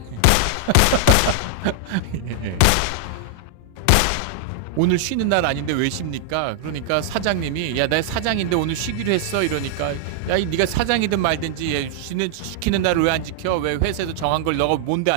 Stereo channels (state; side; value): different; both; correlation -0.01